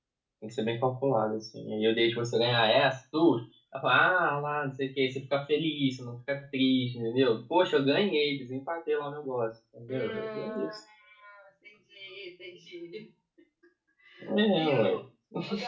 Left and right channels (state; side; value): identical; both; correlation 1.00